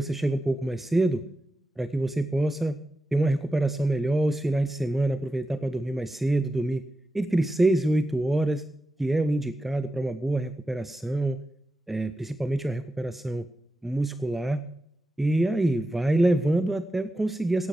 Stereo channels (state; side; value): normal; both; correlation 0.92